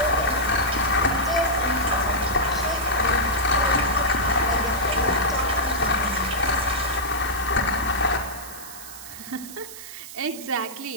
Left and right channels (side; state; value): right; noise; hiss, 13 dB below the sound